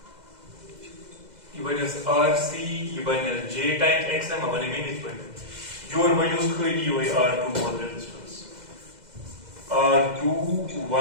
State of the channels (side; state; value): left; late; 2.0 ms